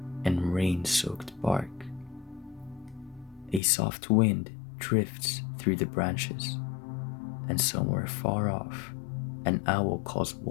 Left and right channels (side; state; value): right; drops out; at 3.6 s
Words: and rain-soaked bark. A soft wind drifts through the branches, and somewhere far off, an owl calls